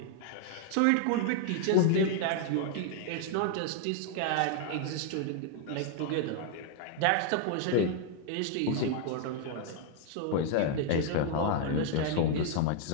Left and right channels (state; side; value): different; both; correlation 0.00